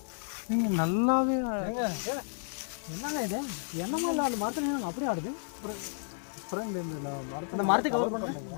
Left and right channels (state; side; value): silent; right; digital silence